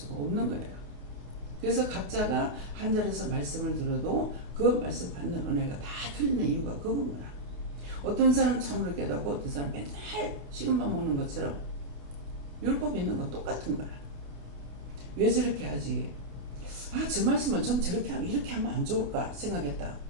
없는 거예요. 그래서 각자가 한 자리에서 말씀을 들어도 그 말씀 받는 은혜가 다 틀리는 이유가 그겁니다. 어떤 사람 참으로 깨닫고 어떤 사람 맨날 식은 밥 먹는 것처럼 율법 있는 건 똑같은 거야. 왜 저렇게 하지? 저 말씀은 좀 이렇게 하면 안 좋을까 생각했다.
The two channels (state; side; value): late; left; 28 ms